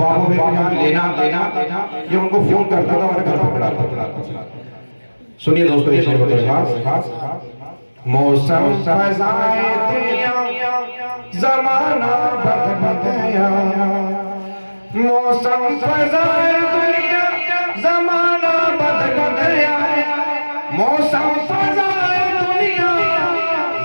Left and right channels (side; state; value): both; inverted; correlation -1.00